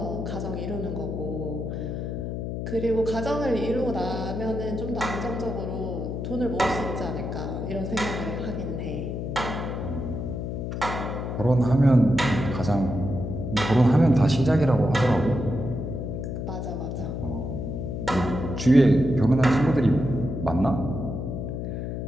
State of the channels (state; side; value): noise; left; hum, 4 dB below the sound